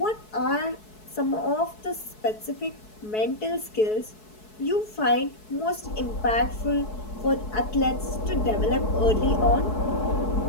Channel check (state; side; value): late; right; 4.7 ms